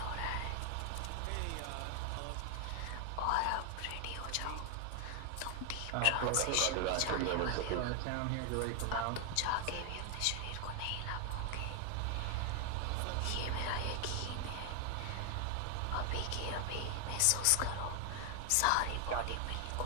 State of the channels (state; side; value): different; both; correlation 0.00